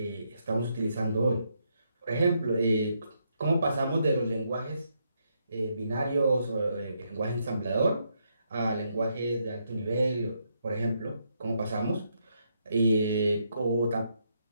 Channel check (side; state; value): both; inverted; correlation -0.78